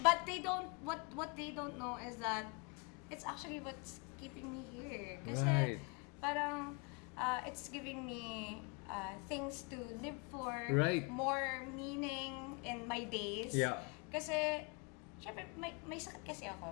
But what they don't know is that it's actually what's keeping me here. Kasi Right. parang it's giving me things to live for, Right. more meaning in my days. Yeah. Kasi, syempre, may sakit kasi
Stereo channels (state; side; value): quieter; right; 32.2 dB